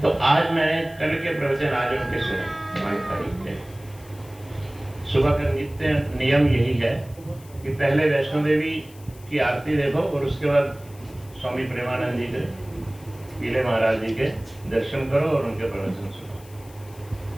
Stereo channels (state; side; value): noise; left; hiss, 24 dB below the sound